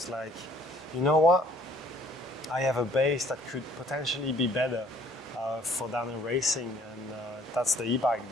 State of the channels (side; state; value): both; normal; correlation 0.58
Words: like, you know what? I have a base that could potentially be better for downhill racing, and that's the e-bike,